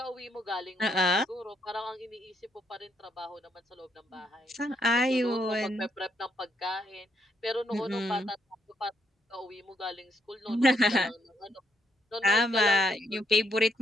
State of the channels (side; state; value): both; normal; correlation 0.75